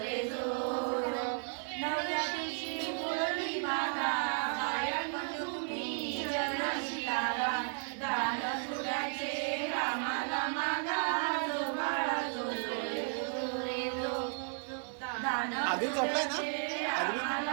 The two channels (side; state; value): left; silent; 55 dB below the other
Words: रे जो नवव्या दिवशी बोलली बाला, गायक तुम्ही जन शिकारा, दान सुराचे रामाला मागा, जो बाळा जो रे जो दान आधी झोपलाय ना?